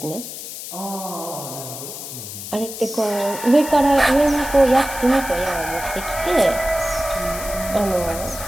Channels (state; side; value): noise; left; hiss, 10 dB below the sound